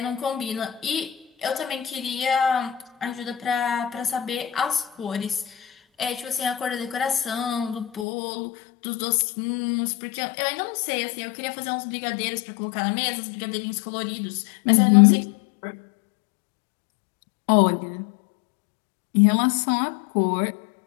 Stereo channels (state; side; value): drops out; right; at 8.1 s